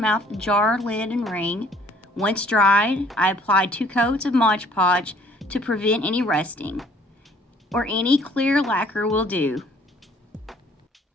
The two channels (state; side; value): normal; both; correlation 0.58